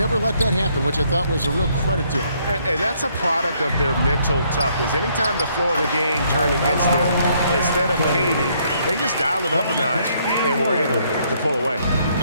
let that happen, which I thought was a real credit to them. And that's a product of their mental toughness. Anytime the flow of the game turned against them, instead of caving, they just dialed it up a notch and were able to pull away.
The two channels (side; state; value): both; inverted; correlation -0.69